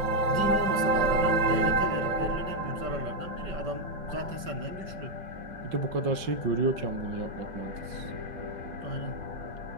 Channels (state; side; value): late; left; 5.1 ms